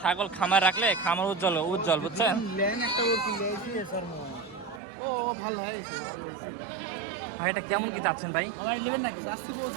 খামার রাখলে খামার উজ্জ্বল উজ্জ্বল, বুঝছেন। ভাই এটা কেমন কি চাচ্ছেন ভাই?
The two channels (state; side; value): drops out; left; at 4.8 s